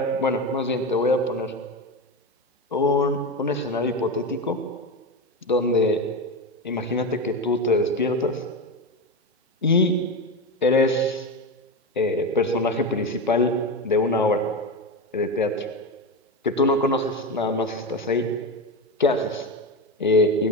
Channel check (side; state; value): both; normal; correlation 0.18